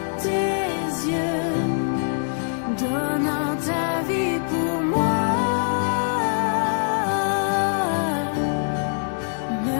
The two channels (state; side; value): silent; right; digital silence